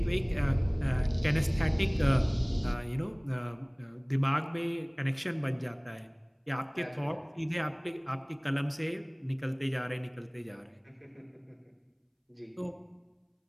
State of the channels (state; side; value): identical; both; correlation 1.00